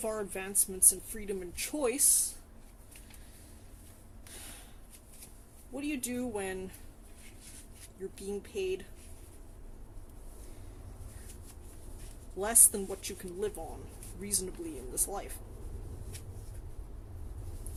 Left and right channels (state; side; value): identical; both; correlation 1.00